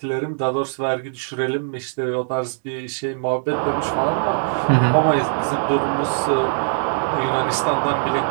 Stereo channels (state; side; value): silent; left; 63 dB below the other